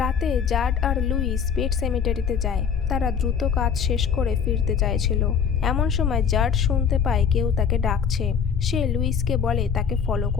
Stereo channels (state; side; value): quieter; right; 6.9 dB